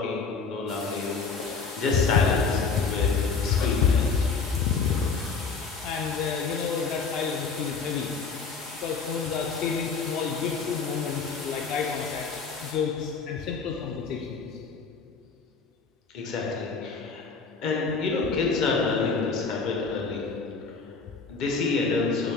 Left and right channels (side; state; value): right; quieter; 4.9 dB